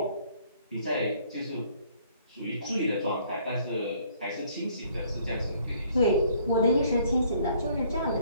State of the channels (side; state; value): both; inverted; correlation -0.61